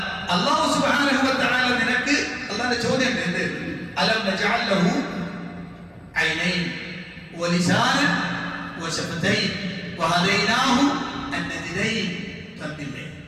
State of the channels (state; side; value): identical; both; correlation 1.00